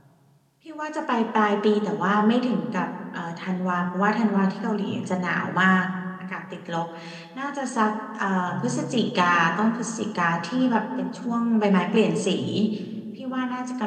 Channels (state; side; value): identical; both; correlation 1.00